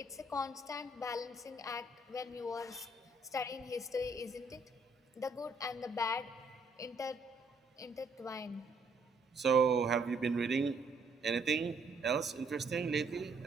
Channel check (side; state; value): left; quieter; 3.1 dB